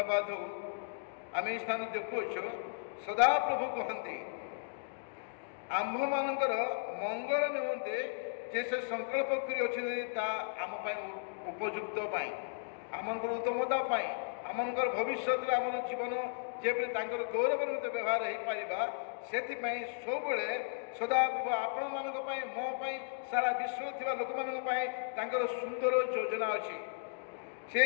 ଆମେ ଏହି ସ୍ଥାନ ଦେଖୁଅଛୁ, ସଦାପ୍ରଭୁ କହନ୍ତି ଆମ୍ଭମାନଙ୍କର ମଙ୍ଗଳ ନିମନ୍ତେ ଯେ ସେ ସଂକଳ୍ପ କରିଅଛନ୍ତି ତାହା ଆମ ପାଇଁ ଉପଯୁକ୍ତ ପାଇଁ, ଆମମାନଙ୍କର ଉତ୍ତମତା ପାଇଁ, ଆମମାନଙ୍କର ଭବିଷ୍ୟତରେ ଆମର ଜୀବନ ଯେପରି ତାଙ୍କର ଗୌରବ ନିମନ୍ତେ ବ୍ୟବହାର ହୋଇପାରିବା, ସେଥିପାଇଁ ସବୁବେଳେ ସଦାପ୍ରଭୁ ଆପଣମାନଙ୍କ ପାଇଁ, ମୋ ପାଇଁ, ସାରା ବିଶ୍ୱରେ ଥିବା ଲୋକମାନଙ୍କ ପାଇଁ ତାଙ୍କର ସୁନ୍ଦର ଯୋଜନା ଅଛି।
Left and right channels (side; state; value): right; silent; digital silence